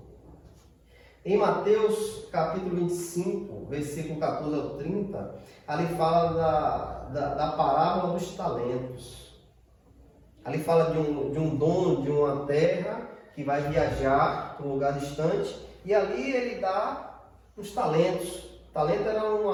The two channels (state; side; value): identical; both; correlation 1.00